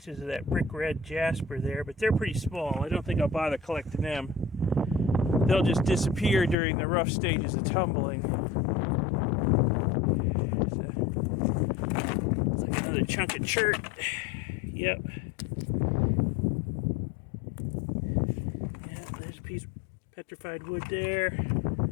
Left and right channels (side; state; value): right; drops out; at 6.6 s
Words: of that brick red Jasper there, but they're pretty small. I don't think I'll bother collecting them. They'll just disappear during the rough stages of tumbling. It's like another chunk of chert. Yep. Yeah, there's a piece of petrified wood there.